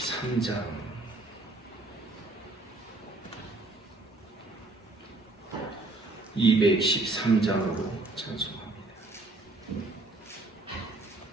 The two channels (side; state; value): left; quieter; 3.0 dB